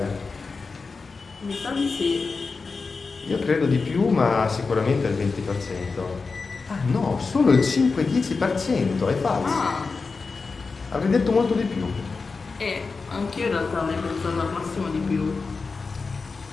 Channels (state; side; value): quieter; right; 4.4 dB